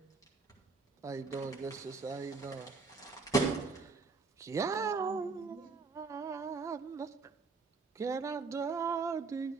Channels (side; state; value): left; quieter; 4.3 dB